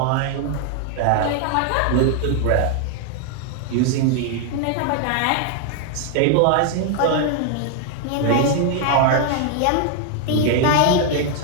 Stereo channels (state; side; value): different; both; correlation 0.00